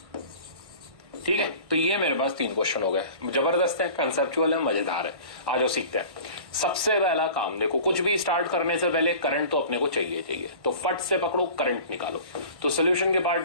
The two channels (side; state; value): left; late; 1.5 ms